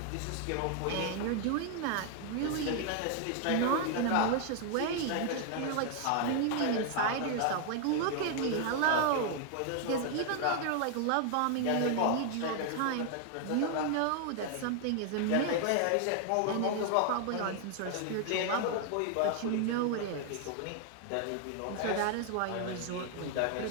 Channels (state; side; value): different; both; correlation 0.00